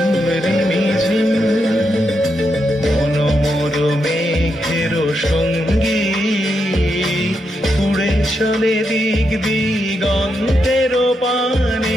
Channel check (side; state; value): both; normal; correlation 0.83